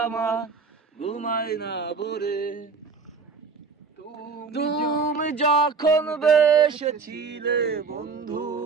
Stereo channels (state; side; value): quieter; left; 5.0 dB